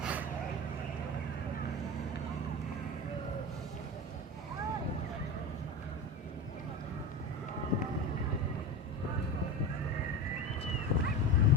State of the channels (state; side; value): normal; both; correlation 0.25